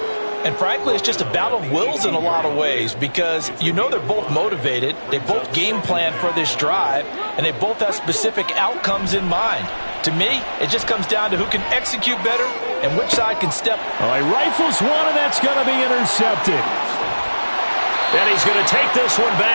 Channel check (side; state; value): both; inverted; correlation -1.00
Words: And frankly, it's just a battle of wills in a lot of ways because you know they're both motivated. They both game plan for this drive, and they both have specific outcomes in mind. To me, it just comes down to who can execute better and which side can step. He rifles one, and that's going to be intercepted. And he's going to take this one